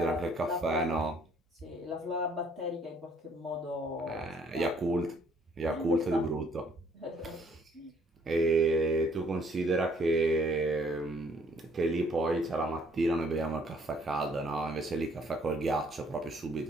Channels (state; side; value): normal; both; correlation 0.63